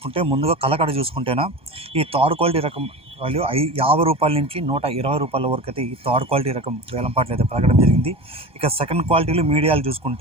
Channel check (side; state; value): left; late; 1.2 ms